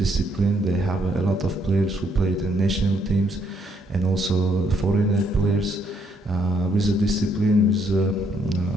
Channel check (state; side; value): normal; both; correlation 0.71